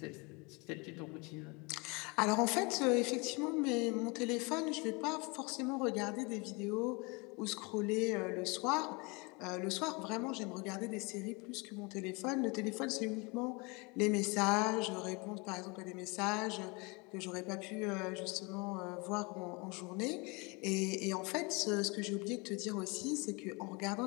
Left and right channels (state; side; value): quieter; right; 28.5 dB